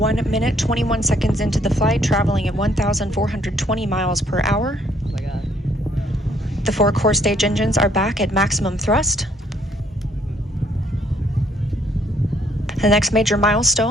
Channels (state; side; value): normal; both; correlation 0.66